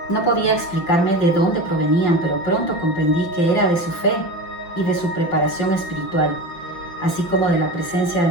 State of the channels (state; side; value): late; right; 5.8 ms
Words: no podía explicarme de dónde provenían, pero pronto comprendí que era de su fe y de su preparación espiritual, así como de la presencia de